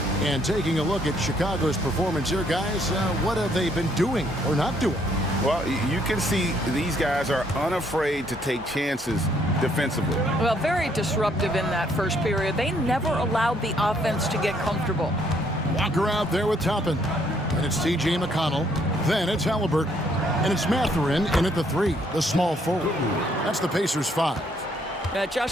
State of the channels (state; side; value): normal; both; correlation 0.68